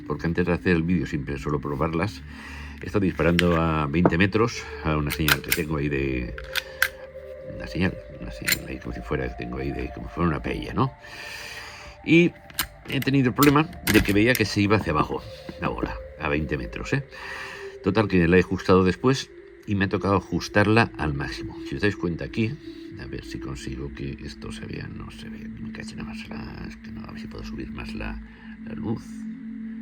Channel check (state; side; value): identical; both; correlation 1.00